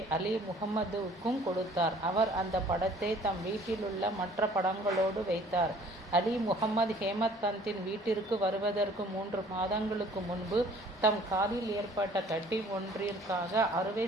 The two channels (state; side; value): normal; both; correlation 0.54